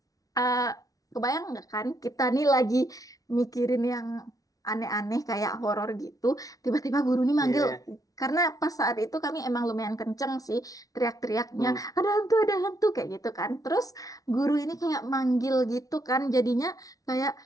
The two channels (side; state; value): right; late; 0.18 ms